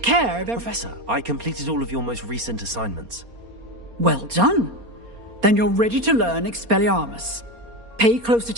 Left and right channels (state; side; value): late; left; 4.3 ms